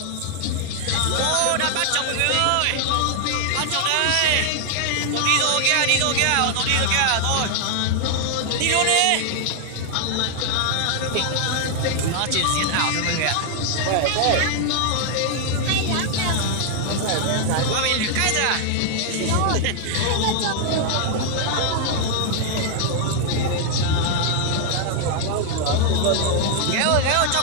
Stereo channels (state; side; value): different; both; correlation 0.00